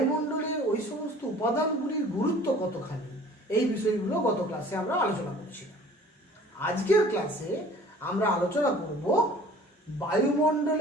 ওই সমস্ত উপাদানগুলির গুরুত্ব কতখানি, এই বিষয়গুলো গত ক্লাসে আমরা আলোচনা করেছিলাম। আজকের ক্লাসে আমরা আলোচনা করব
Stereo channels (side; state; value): both; normal; correlation 0.49